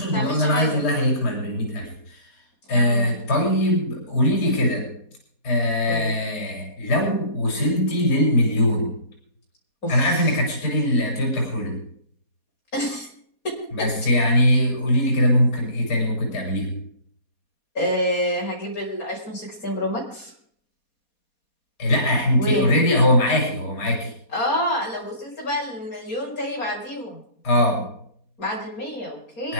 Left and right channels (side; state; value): right; late; 4.2 ms